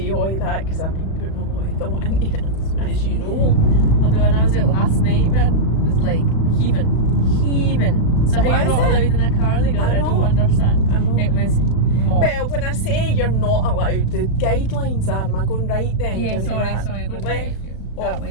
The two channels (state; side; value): late; right; 36 ms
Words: all of that because I've been putting a lot of thought into it, as you know. Although when I was out last night, man, it was like heaving. So how What you're is not it? allowed in a car together, I don't know. understand. I know. It was mobbed. Well, when I say you're not allowed, the guidelines are, am I going right then? Yeah, Into sorry, that? go Left. that